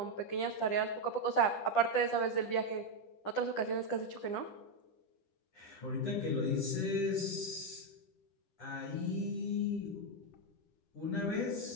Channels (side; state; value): right; late; 10 ms